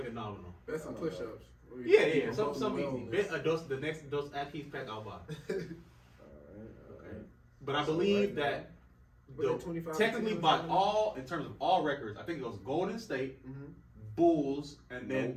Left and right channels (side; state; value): both; identical; correlation 1.00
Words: it nominal. That's some push-ups. Yeah. Some easy. Bet the next Dos Akis pack I'll buy. All right. But I So believe right that But the 25 technically teams by or all in terms of all records, I think it goes Golden State, Bulls, and then